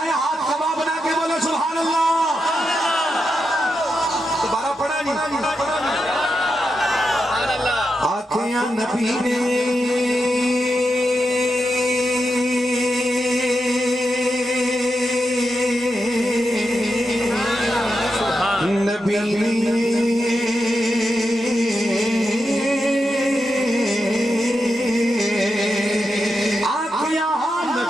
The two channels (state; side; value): normal; both; correlation 0.87